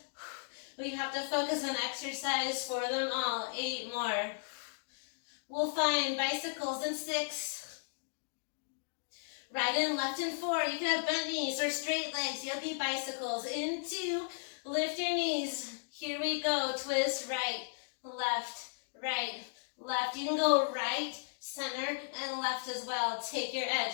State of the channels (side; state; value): right; silent; digital silence